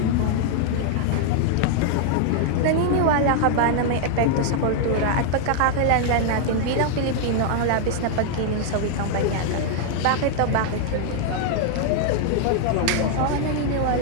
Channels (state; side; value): different; both; correlation 0.00